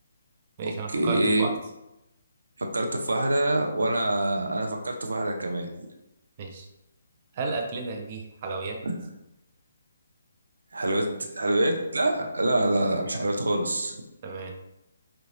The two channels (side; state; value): both; inverted; correlation -0.86